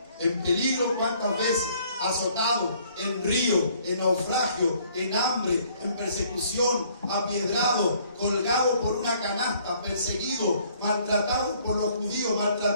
en peligro cuántas veces, azotado, en río, en naufragio, en hambre, en persecución, apiedrado, colgado por una canasta, perseguido, maltratado por los judíos,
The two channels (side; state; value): both; inverted; correlation -0.62